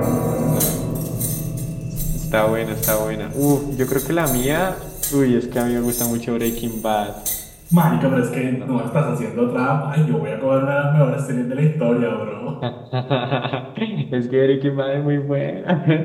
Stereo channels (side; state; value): both; identical; correlation 1.00